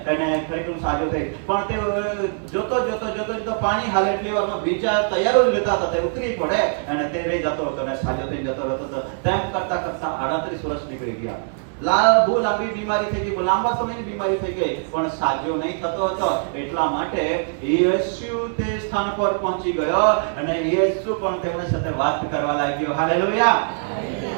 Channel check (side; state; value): left; silent; digital silence